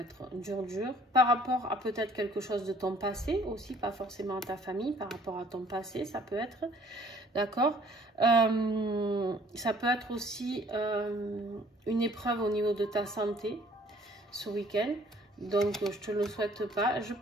dur par rapport à peut-être quelque chose de ton passé aussi, pas forcément à ta famille, par rapport à ton passé ça peut être, d'accord. Ça peut être aussi une épreuve au niveau de ta santé ce week-end. Donc, je te le souhaite pas. Je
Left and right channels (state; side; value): normal; both; correlation 0.57